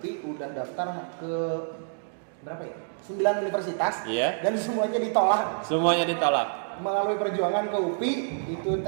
udah daftar ke berapa ya? 9 universitas. Iya. Dan semuanya ditolak. Semuanya ditolak. Melalui perjuangan ke UPI, itu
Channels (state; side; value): silent; left; digital silence